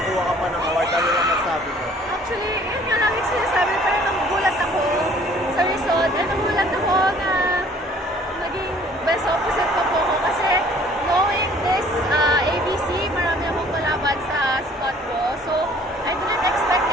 ka pa ng award. Ano lang masabi ko? Actually, yun nga lang yung sinasabi, parang nagugulat ako sa result. And nagugulat ako na naging best opposite pa po ako kasi knowing this ABC, marami akong kalaban sa spot ko. So, I didn't expect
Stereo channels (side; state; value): both; normal; correlation 0.55